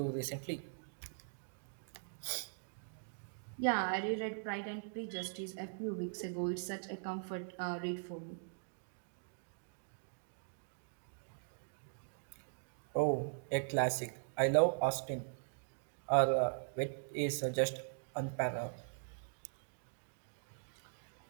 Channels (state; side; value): silent; left; digital silence